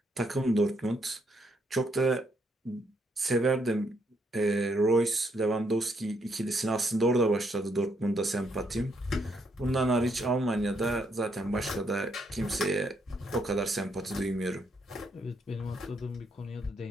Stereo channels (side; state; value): both; normal; correlation 0.75